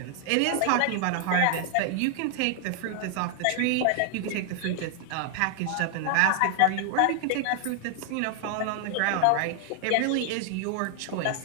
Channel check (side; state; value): both; different; correlation 0.00